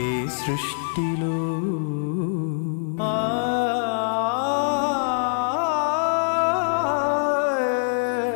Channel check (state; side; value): silent; right; 63 dB below the other